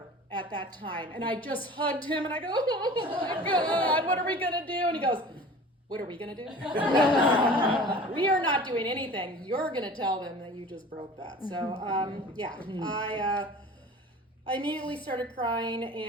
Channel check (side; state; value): both; normal; correlation 0.41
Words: at that time, and I just hugged him, and I go, oh my God, what are we gonna do? And he goes, what are we gonna do? We are not doing anything. You're gonna tell them that you just broke that. So yeah, I immediately started crying,